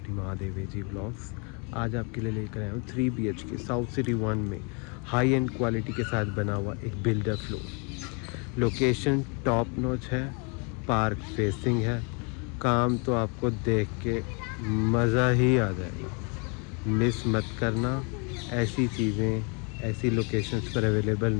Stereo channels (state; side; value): quieter; right; 34.8 dB